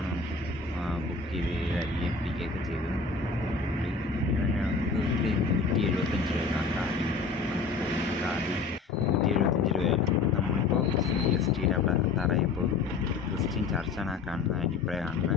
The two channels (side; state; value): right; quieter; 4.4 dB